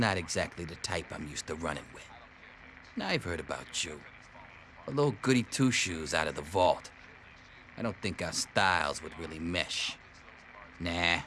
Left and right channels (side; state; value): both; identical; correlation 1.00